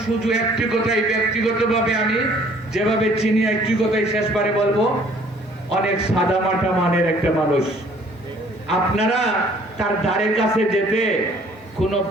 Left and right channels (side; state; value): both; normal; correlation 0.57